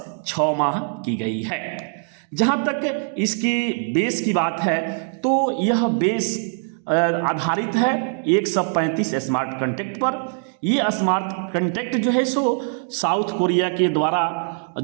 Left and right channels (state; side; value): silent; left; 59 dB below the other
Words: 6 माह की गई है। जहां तक इसकी बेस की बात है, तो यह बेस आधारित है 135 स्मार्ट कॉन्ट्रैक्ट पर। ये स्मार्ट कॉन्ट्रैक्ट जो है सो साउथ कोरिया के द्वारा,